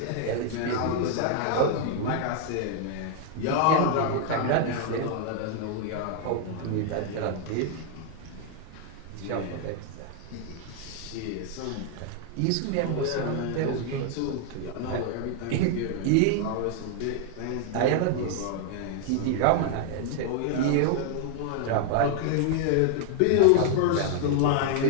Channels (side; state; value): both; different; correlation 0.00